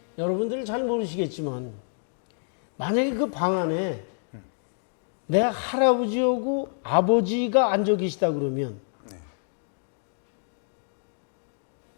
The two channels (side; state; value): right; silent; digital silence